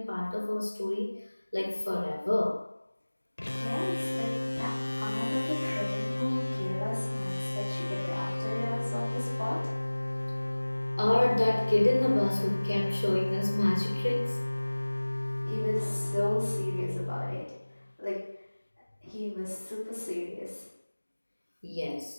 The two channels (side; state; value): both; inverted; correlation -1.00